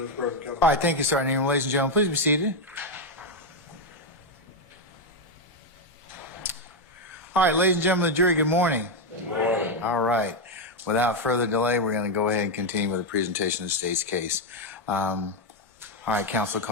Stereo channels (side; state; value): both; normal; correlation 0.04